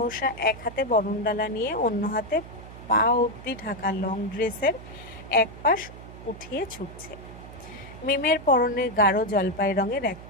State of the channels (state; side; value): noise; right; hum, 15 dB below the sound